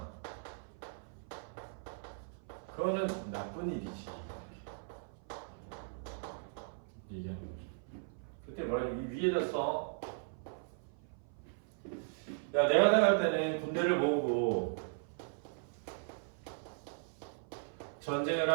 그거는 나쁜 일이지. 얘기하는 거죠. 그때 뭐라 이 위에다 써. 야, 내가 나갈 때는 군대를 모으고 전쟁을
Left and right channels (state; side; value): silent; left; 52 dB below the other